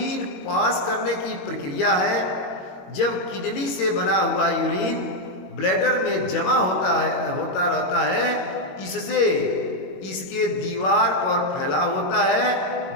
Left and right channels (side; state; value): right; late; 21 ms